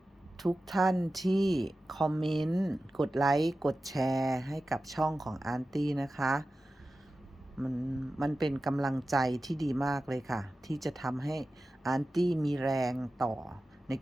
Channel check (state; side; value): normal; both; correlation 0.94